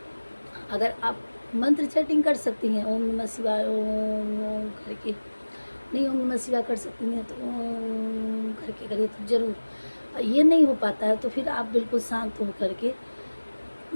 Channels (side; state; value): both; inverted; correlation -1.00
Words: अगर आप मंत्र चैटिंग कर सकती हैं, ओम नमः शिवाय ओम ओम करके, नहीं ओम नमः शिवाय कर सकती हैं तो ओम करके करिए तो ज़रूर। ये नहीं हो पाता है तो फिर आप बिल्कुल शांत हो करके,